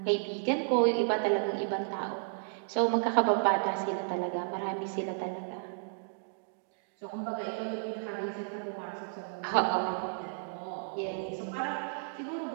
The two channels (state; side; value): silent; left; digital silence